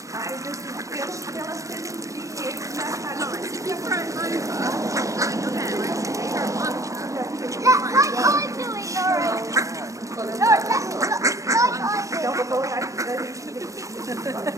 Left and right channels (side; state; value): left; late; 0.16 ms